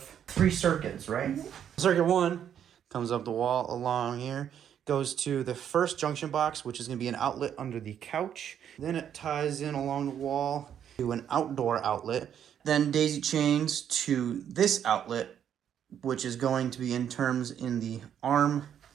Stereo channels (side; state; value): left; quieter; 9.2 dB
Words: 3 circuits, right? Circuit 1 comes up the wall along here, goes to the first junction box, which is gonna be an outlet under the couch. Then it ties in along the wall to an outdoor outlet. Then daisy chains to this outlet, which is going to be in terms in the arm